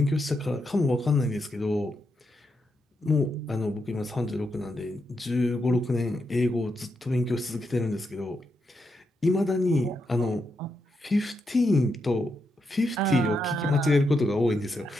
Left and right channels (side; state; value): both; normal; correlation 0.83